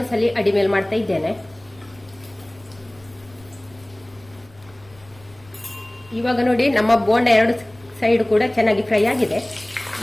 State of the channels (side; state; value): left; noise; rumble, 26 dB below the sound